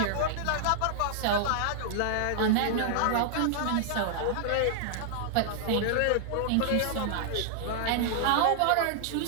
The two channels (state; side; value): different; both; correlation -0.01